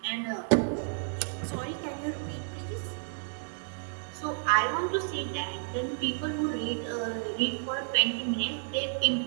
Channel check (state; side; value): silent; left; 57 dB below the other